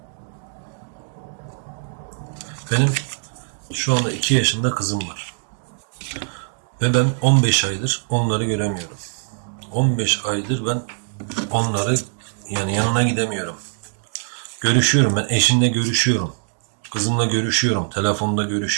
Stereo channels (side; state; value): left; silent; digital silence